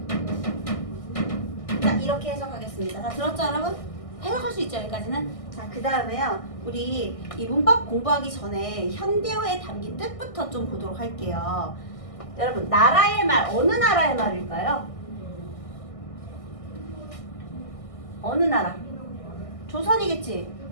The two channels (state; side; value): late; right; 1.6 ms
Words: 자, 이렇게 해석하겠습니다. 다 들었죠, 여러분? 해석할 수 있죠, 여기까지는? 자, 그 다음에요. 우리 이 문법 공부하기 전에 현대어에 담긴 뜻부터 좀 보도록 할게요. 여러분, 나라의 말, 어느 나라의 말일까요? 어느 나라? 조선이겠지?